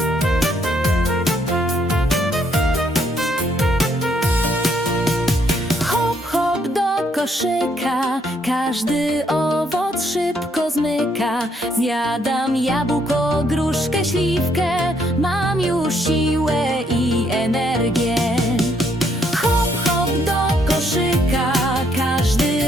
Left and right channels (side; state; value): both; normal; correlation 0.71